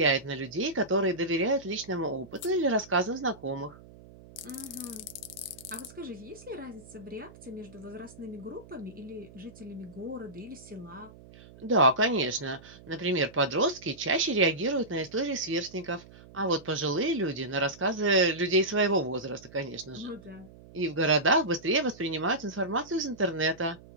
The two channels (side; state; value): right; noise; hum, 21 dB below the sound